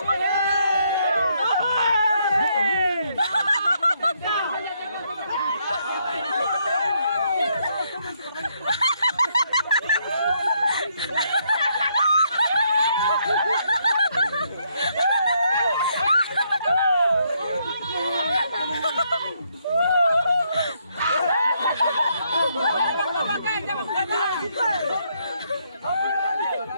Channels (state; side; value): inverted; both; correlation -0.74